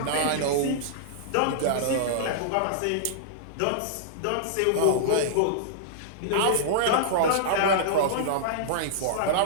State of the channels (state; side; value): different; both; correlation -0.02